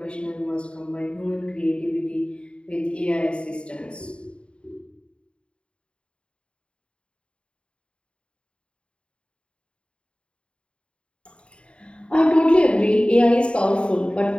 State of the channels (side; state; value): right; late; 0.056 ms